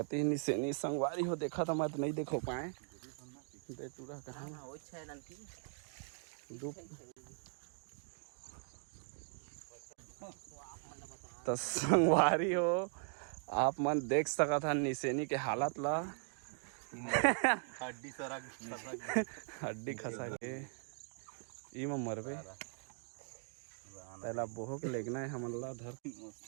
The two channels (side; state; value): left; silent; 51 dB below the other